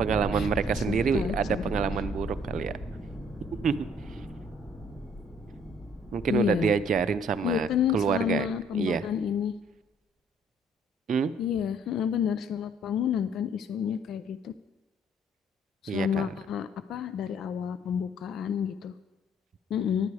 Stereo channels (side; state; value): both; normal; correlation 0.61